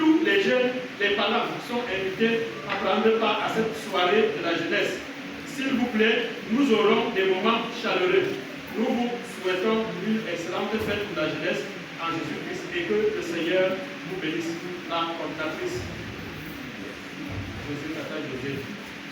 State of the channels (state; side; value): identical; both; correlation 1.00